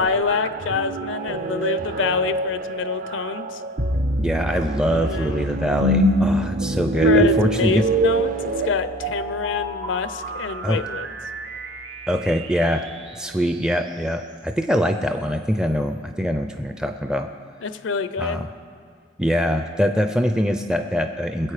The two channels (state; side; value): normal; both; correlation 0.49